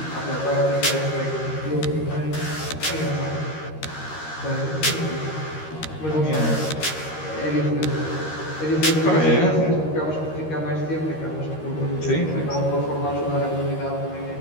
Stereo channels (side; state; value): right; late; 13 ms